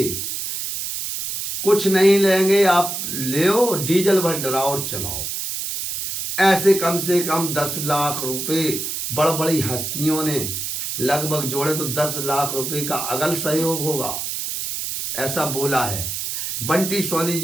कुछ नहीं लेंगे आप ले डीजल भर डराओ और चलाओ, ऐसे कम से कम 10 लाख रुपए बड़ बड़ी हस्तियों ने लगभग जोड़े तो 10 लाख रुपए का अगल सहयोग होगा, ऐसा बोला है। बंटी सोनी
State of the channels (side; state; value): right; noise; hiss, 4 dB below the sound